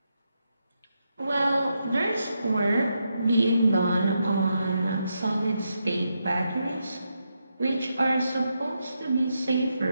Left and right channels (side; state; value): both; inverted; correlation -0.83